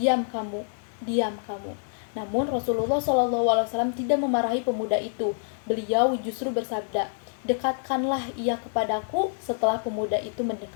kamu, diam kamu." Namun Rasulullah SAW tidak memarahi pemuda itu. Beliau justru bersabda, "Dekatkanlah ia kepadaku." Setelah pemuda itu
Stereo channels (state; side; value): silent; right; digital silence